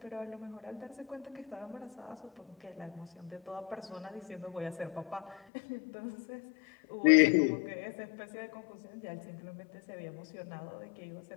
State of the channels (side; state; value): right; drops out; at 5.4 s